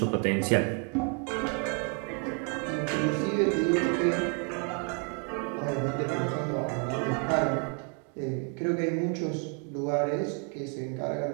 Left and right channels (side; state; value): left; quieter; 37.0 dB